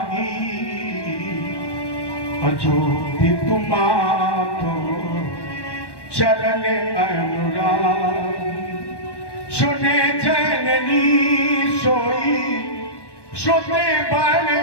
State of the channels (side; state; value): right; late; 1.1 ms